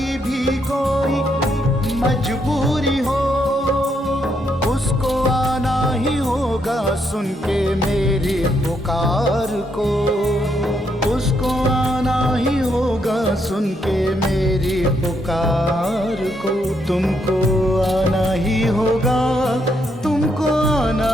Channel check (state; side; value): normal; both; correlation 0.76